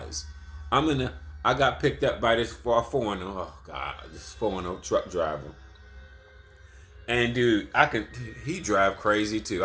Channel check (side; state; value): both; identical; correlation 1.00